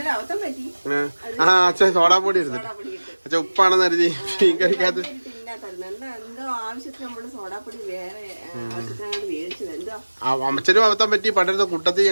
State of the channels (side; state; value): both; inverted; correlation -1.00